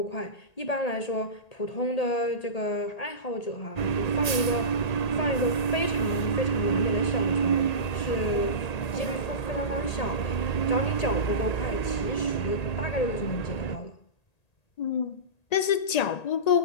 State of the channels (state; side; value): late; right; 1.8 ms